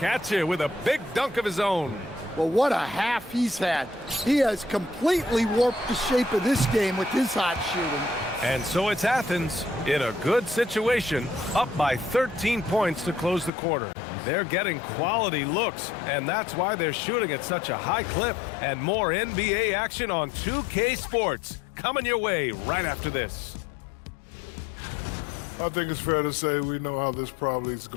at you with a big dunk of his own. Well, what a half he's had. He has completely warped the shape of this game with his hot shooting. And so it's Athens in a good situation, up by 13 points to close the quarter. They're getting quality looks, and that's why they're shooting at such a high clip. And more NBA action on 2K Sports coming your way right after this. I think it's fair to say we know how this probably is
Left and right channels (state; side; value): drops out; right; at 13.5 s